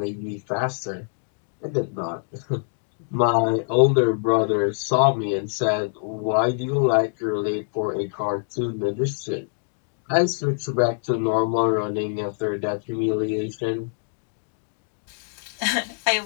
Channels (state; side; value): silent; right; digital silence